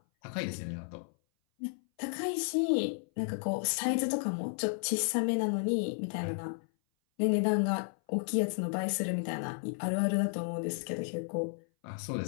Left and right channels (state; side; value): silent; right; 56 dB below the other